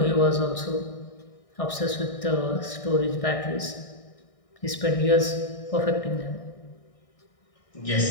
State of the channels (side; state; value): right; late; 1.6 ms